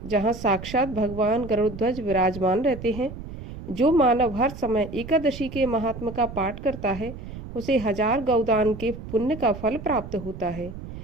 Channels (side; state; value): right; noise; rumble, 11 dB below the sound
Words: जहाँ साक्षात भगवान गरुड़ध्वज विराजमान रहते हैं। जो मानव हर समय एकादशी के महात्म का पाठ करता है उसे 1000 गौदान के पुण्य का फल प्राप्त होता है।